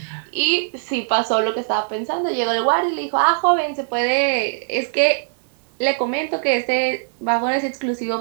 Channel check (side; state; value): left; silent; digital silence